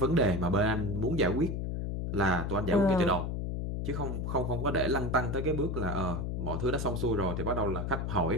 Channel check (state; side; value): noise; left; hum, 2 dB below the sound